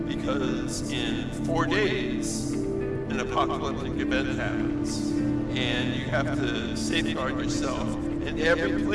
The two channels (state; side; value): identical; both; correlation 1.00